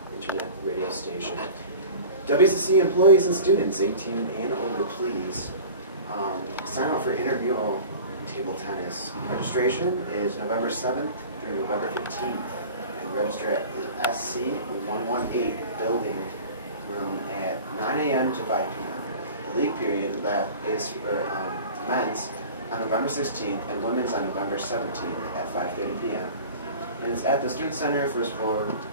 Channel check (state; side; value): inverted; both; correlation -0.39